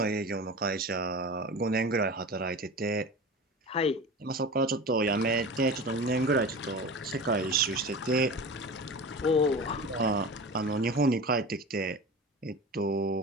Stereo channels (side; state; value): both; normal; correlation 0.32